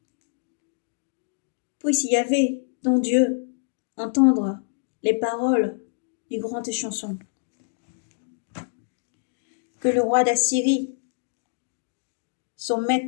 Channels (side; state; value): right; silent; digital silence